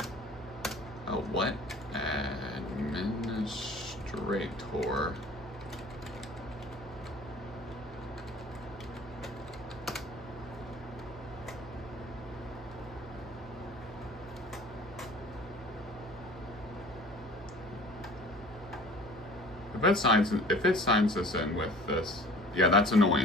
Oh, what? Administrator. If it signs this in with this, yeah, that's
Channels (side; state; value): both; normal; correlation 0.46